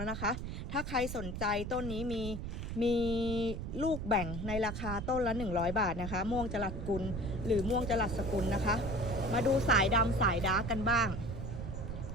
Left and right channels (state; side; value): noise; right; rumble, 5 dB below the sound